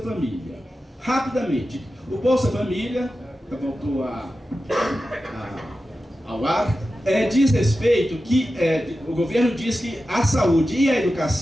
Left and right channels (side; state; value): both; normal; correlation 0.92